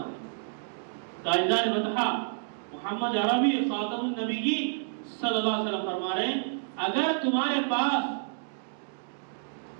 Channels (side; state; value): left; silent; digital silence